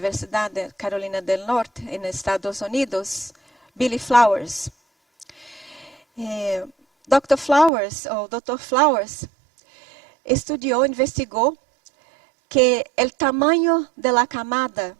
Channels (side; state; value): left; drops out; at 7.7 s